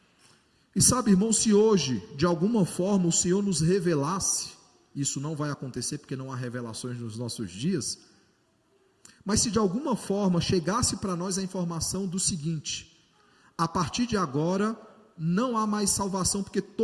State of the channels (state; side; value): identical; both; correlation 1.00